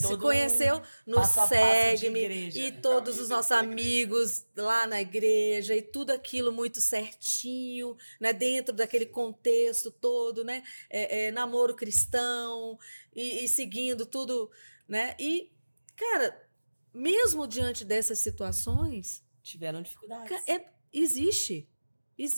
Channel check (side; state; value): both; inverted; correlation -1.00